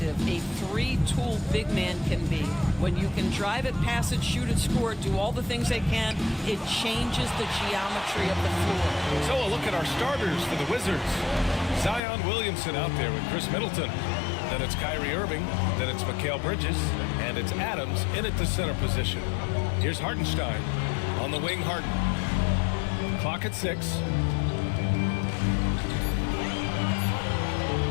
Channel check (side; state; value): right; drops out; at 12.0 s